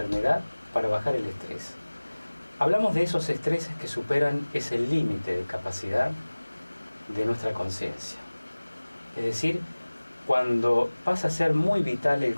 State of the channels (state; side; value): inverted; both; correlation -1.00